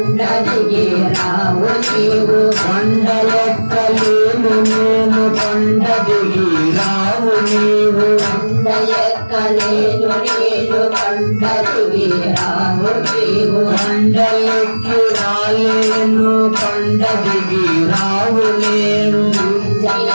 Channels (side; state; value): both; inverted; correlation -1.00